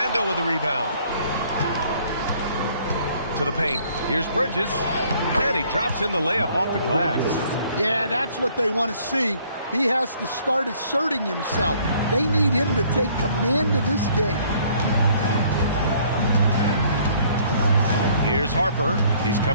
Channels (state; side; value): inverted; both; correlation -0.60